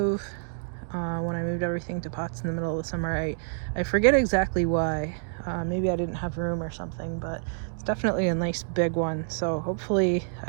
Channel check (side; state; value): left; silent; digital silence